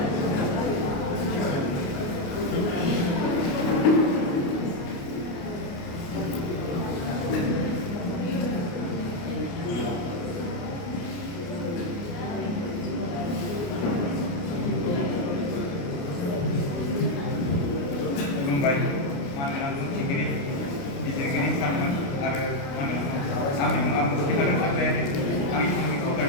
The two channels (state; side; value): late; right; 29 ms